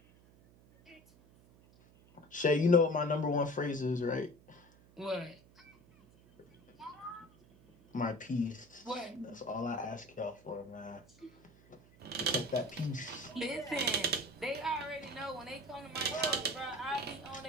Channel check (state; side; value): noise; right; hum, 26 dB below the sound